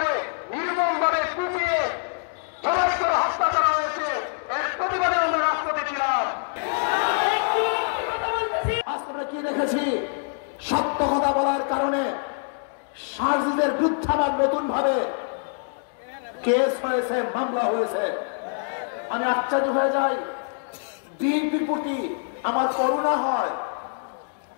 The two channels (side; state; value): right; silent; digital silence